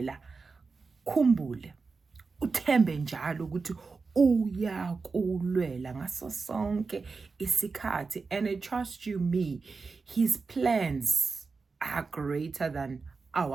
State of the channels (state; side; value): quieter; left; 4.5 dB